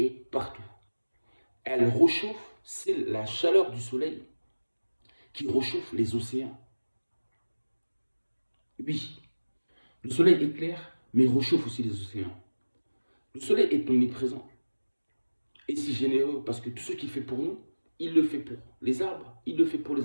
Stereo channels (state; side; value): inverted; both; correlation -1.00